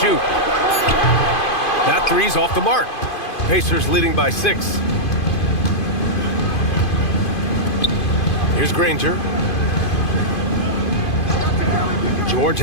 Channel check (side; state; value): right; late; 2.5 ms